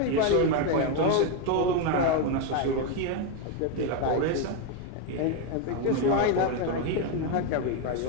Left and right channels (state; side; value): different; both; correlation 0.02